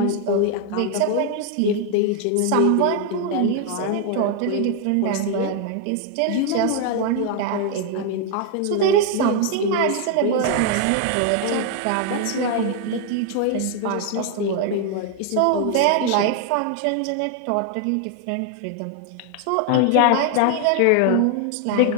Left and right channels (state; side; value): different; both; correlation 0.00